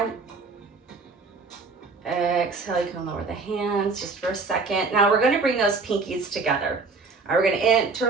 Exhale. You can lower the hands just for a second. Now we're going to bring those pinkies together. All right, we're going to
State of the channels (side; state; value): left; quieter; 4.2 dB